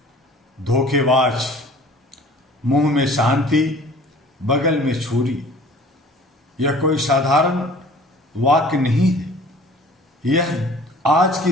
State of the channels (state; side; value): normal; both; correlation 0.48